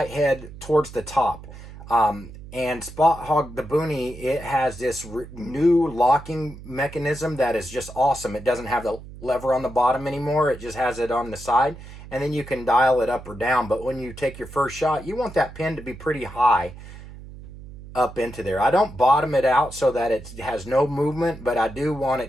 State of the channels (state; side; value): noise; right; hum, 15 dB below the sound